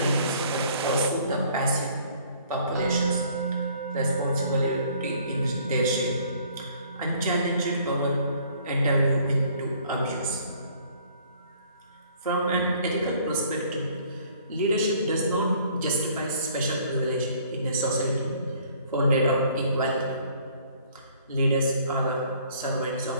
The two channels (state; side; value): inverted; both; correlation -0.58